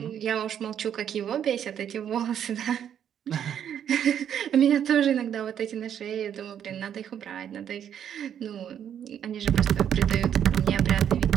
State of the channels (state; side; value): quieter; left; 9.2 dB